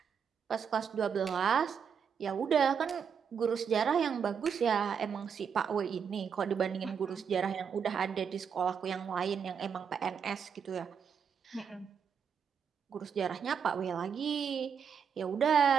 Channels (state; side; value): quieter; left; 7.0 dB